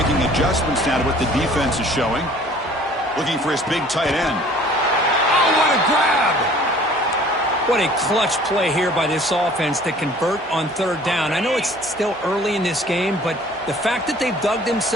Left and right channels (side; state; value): both; normal; correlation 0.52